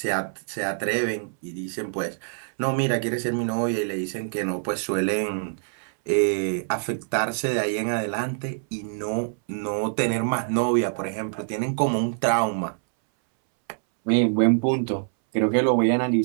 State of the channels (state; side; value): silent; left; 62 dB below the other